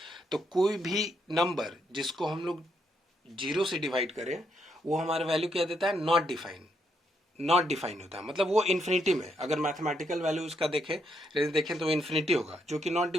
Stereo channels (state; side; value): normal; both; correlation 0.77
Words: तो कोई भी नंबर जिसको हम लोग 0 से डिवाइड करें वो हमारा वैल्यू क्या देता है, नॉट डिफाइन होता है, मतलब वो इन्फिनिटी में, अगर मैथमेटिकल वैल्यू उसका देखें तो इन्फिनिटी होगा, जो कि नॉट